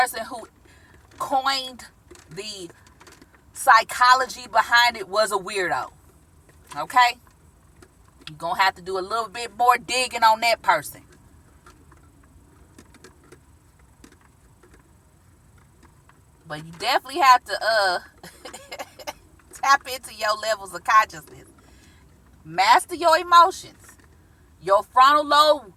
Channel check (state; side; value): identical; both; correlation 1.00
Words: who coined the psychology behind it was a weirdo. Okay? You're going to have to do a little bit more digging on that person. But you definitely have to tap into your levels of consciousness. Master your emotions. Your frontal lobe